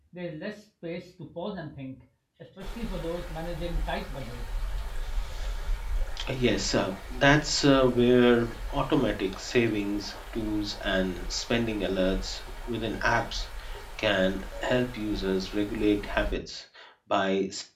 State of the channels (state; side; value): identical; both; correlation 1.00